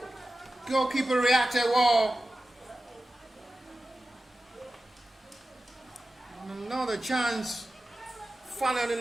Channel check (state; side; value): normal; both; correlation 0.94